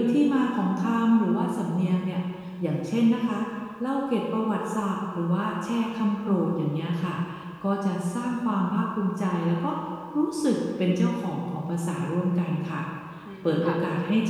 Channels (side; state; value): both; identical; correlation 1.00